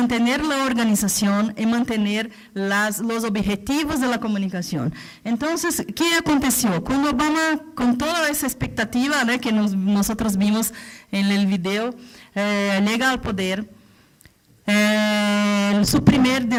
la organización y mantener los objetivos de la comunicación. Entonces, ¿qué aconteció? Cuando Obama, con toda esa expectativa, ¿no?, que nosotros vimos en el video, llega al poder, su primer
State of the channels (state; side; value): identical; both; correlation 1.00